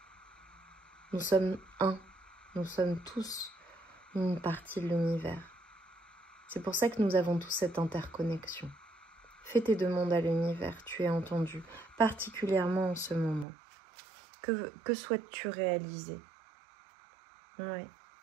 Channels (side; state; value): left; drops out; at 13.5 s